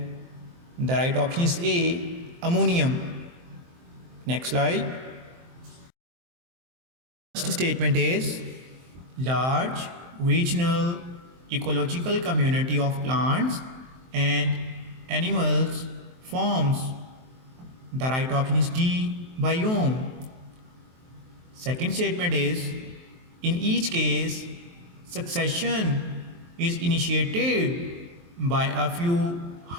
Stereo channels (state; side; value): late; left; 23 ms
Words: the right option is A, ammonium. Next slide. First statement is large regional ecological community of plants and animals forms, the right option is D, biome. Second statement is in each case succession is initiated by a few